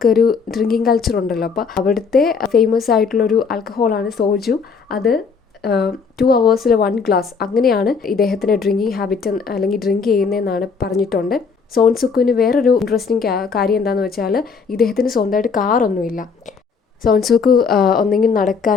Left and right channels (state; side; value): quieter; right; 5.4 dB